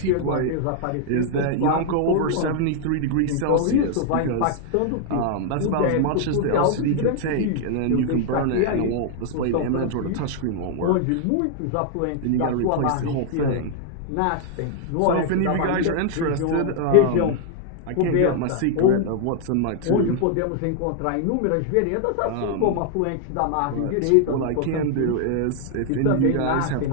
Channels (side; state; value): both; different; correlation 0.00